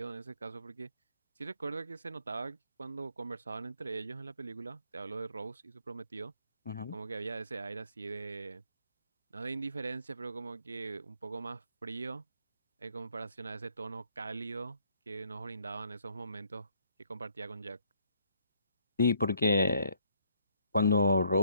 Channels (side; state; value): both; inverted; correlation -0.67